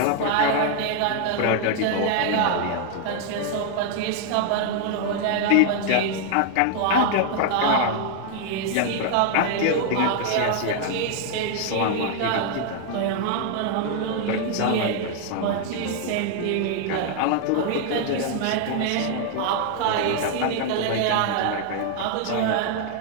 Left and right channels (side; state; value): both; different; correlation 0.00